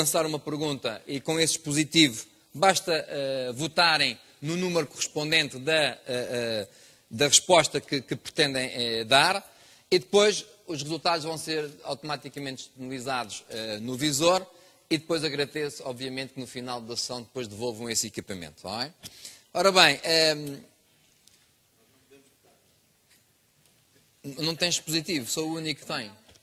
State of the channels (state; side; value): identical; both; correlation 1.00